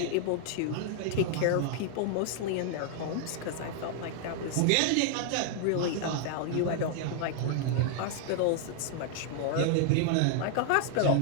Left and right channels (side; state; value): both; different; correlation 0.00